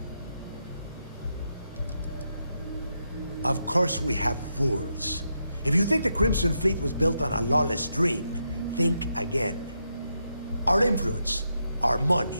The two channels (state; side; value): inverted; both; correlation -0.83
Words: Of course we have rules. If you think the Crimson Fleet was built on a lawless dream, think again. Our influence, our